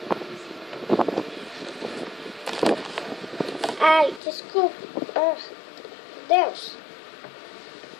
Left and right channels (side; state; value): right; drops out; at 4.2 s